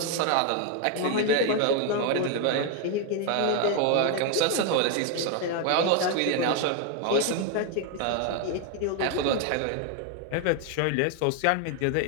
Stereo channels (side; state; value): both; different; correlation 0.01